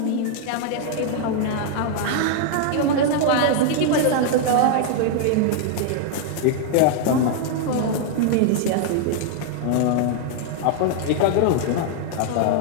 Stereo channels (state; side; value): different; both; correlation -0.01